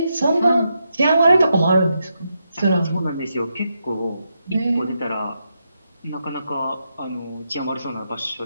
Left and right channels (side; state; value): both; inverted; correlation -0.84